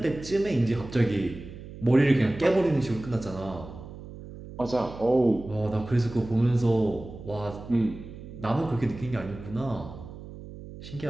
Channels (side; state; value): right; noise; hum, 14 dB below the sound